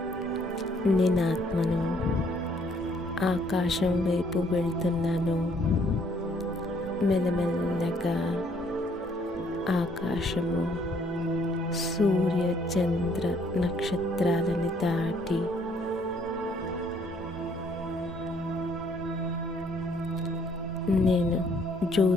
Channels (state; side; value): normal; both; correlation 0.65